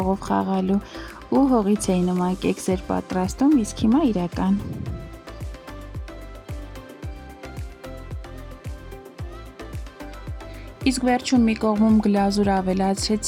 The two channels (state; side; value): identical; both; correlation 1.00